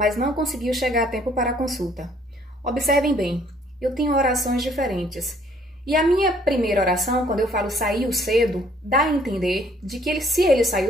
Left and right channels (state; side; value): normal; both; correlation 0.62